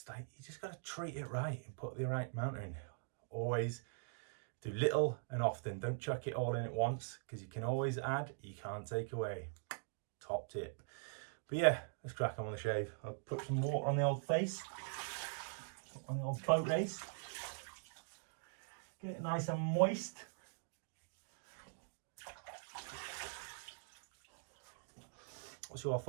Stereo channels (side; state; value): left; silent; digital silence